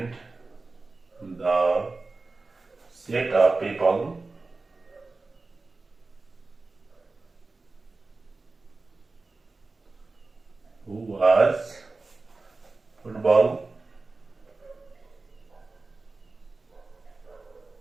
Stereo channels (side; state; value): left; quieter; 3.6 dB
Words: the set of people who was football